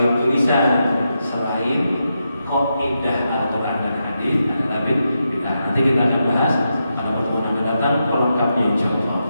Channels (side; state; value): both; inverted; correlation -0.85